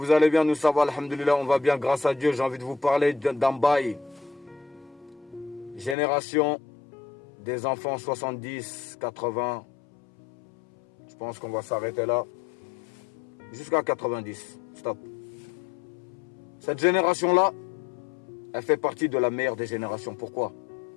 allez bien, nous ça va, alhamdoulilah, on va bien grâce à Dieu. J'ai envie de vous parler d'un bail. Génération des enfants 70, 80, je pense qu'on va s'arrêter là, jusqu'à 90, stop. Cette génération-là, elle fait partie de la meilleure des générations, pourquoi?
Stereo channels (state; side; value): drops out; right; at 6.0 s